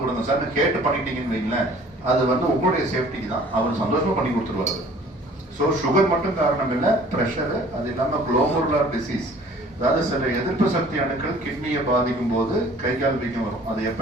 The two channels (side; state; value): both; normal; correlation 0.51